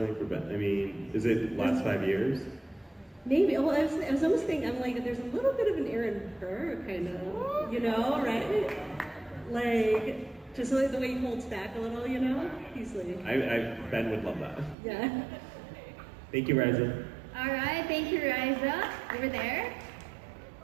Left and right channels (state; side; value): drops out; left; at 14.8 s